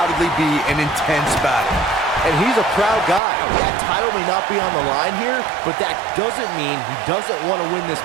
be an intense battle. And he's a proud guy. That title may not be on the line here, but that doesn't mean he doesn't want to win this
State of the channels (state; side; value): drops out; left; at 3.2 s